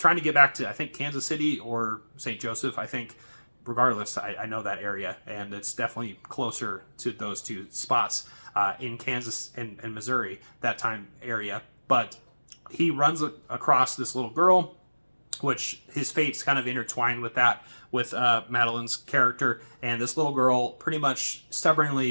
to get back to, I think, Kansas City or St. Joseph, I think. Regardless, I know that area, and it's definitely closer to those two spots in Kansas and Missouri, that time area. But he runs across this little girl, which his fate's kind of intertwined with that, with Madeline's character, and this little girl pretty much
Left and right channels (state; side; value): inverted; both; correlation -1.00